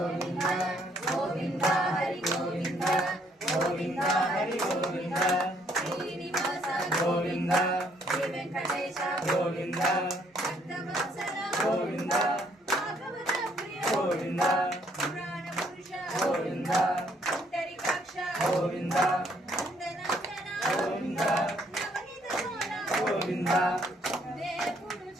గోవింద హరి గోవింద గోవింద హరి గోవింద శ్రీనివాస గోవింద శ్రీ వెంకటేశ గోవింద భక్తవత్సల గోవింద భాగవత ప్రియ గోవింద పురాణ పురుష గోవింద పుండరీకాక్ష గోవింద నందనందన గోవింద నవనీత సోన గోవింద దేవుడు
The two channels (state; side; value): normal; both; correlation 0.67